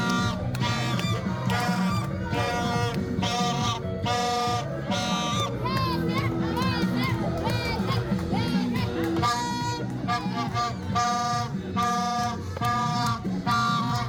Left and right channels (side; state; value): both; identical; correlation 1.00